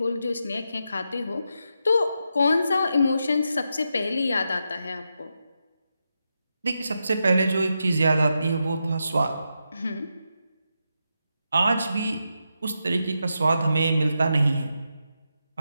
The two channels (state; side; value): inverted; both; correlation -0.85